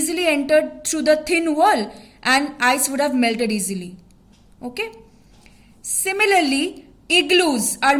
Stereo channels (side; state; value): both; identical; correlation 1.00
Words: entered through the thin wall and ice would have melted easily. Okay. Similarly, igloos are